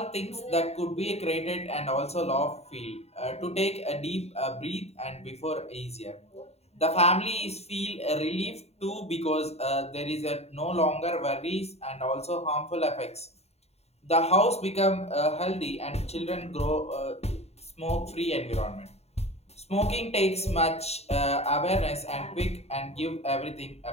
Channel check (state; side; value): late; right; 0.30 ms